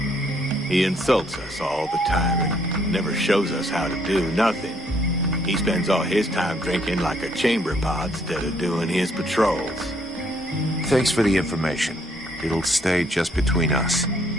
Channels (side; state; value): both; normal; correlation 0.67